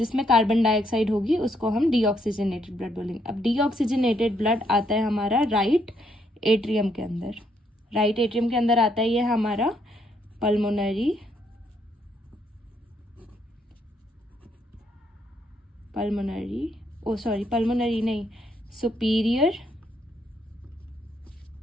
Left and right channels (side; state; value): both; normal; correlation 0.73